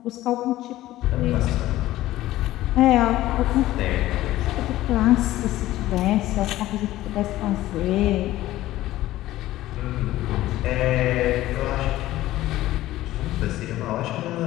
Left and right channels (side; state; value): right; quieter; 15.5 dB